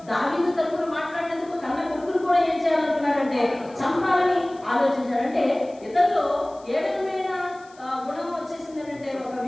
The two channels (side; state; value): left; noise; hiss, 28 dB below the sound